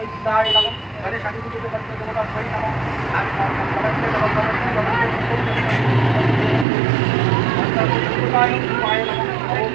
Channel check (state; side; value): drops out; left; at 6.7 s